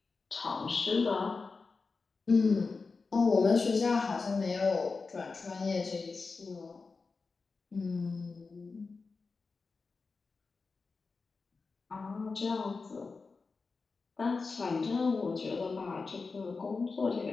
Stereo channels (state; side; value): quieter; right; 4.3 dB